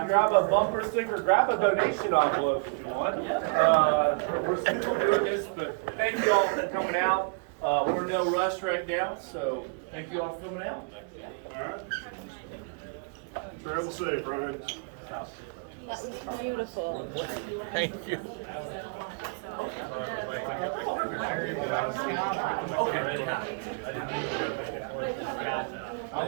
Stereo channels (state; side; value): quieter; left; 37.5 dB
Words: grab a bumper sticker, grab a donation envelope if you want. We're still doing this, but thank you all for coming out. We're in no rush right now, so thank you all for coming out. All right. Travel safe, Ryan. Beautiful. Thank you.